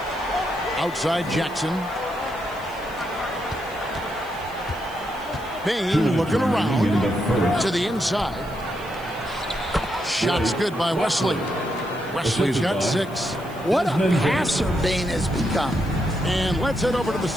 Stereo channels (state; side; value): noise; left; hiss, 23 dB below the sound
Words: Outside Jackson. Bane looking around to the inside. Shots good by Wesley. Wesley's got 6. What a passer Bane has become. And let's head over to the